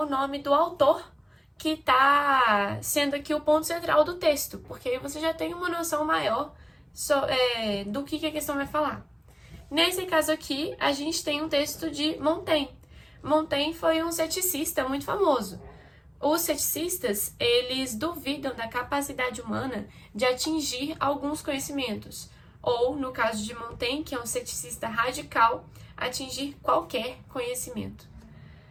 nome do autor que está sendo aqui o ponto central do texto, porque aí você já tem uma noção maior do que a questão vai falar. Nesse caso aqui, a gente tem um texto de Montaigne. Montaigne foi um ceticista muito famoso. Os ceticistas, eles duvidam da capacidade humana de atingir alguns conhecimentos, ou, no caso de Montaigne, que é um ceticista radical, atingir qualquer conhecimento.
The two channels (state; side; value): identical; both; correlation 1.00